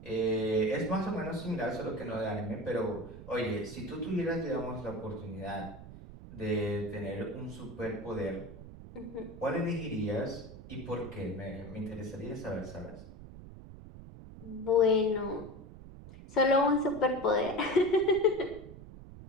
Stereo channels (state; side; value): noise; right; rumble, 15 dB below the sound